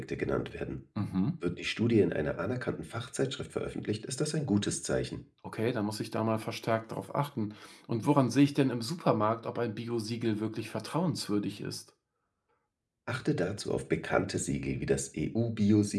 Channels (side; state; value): both; identical; correlation 1.00